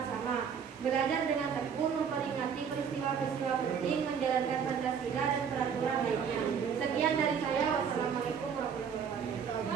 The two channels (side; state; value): left; quieter; 7.1 dB